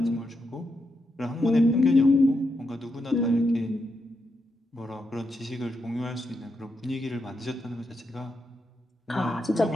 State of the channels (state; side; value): normal; both; correlation 0.83